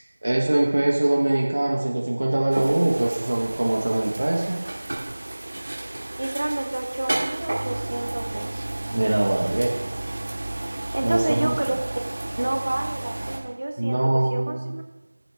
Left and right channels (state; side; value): inverted; both; correlation -1.00